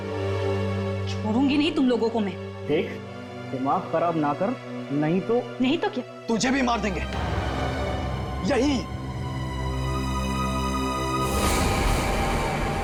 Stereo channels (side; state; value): both; identical; correlation 1.00